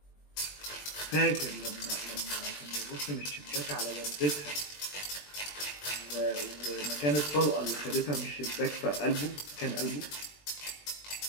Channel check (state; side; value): late; right; 20 ms